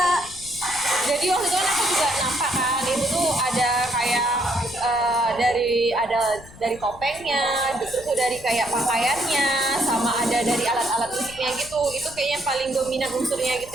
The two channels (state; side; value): noise; left; rumble, 19 dB below the sound